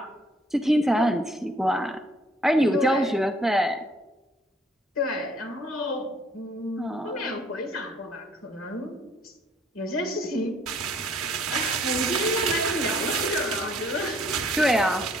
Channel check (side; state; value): both; normal; correlation 0.62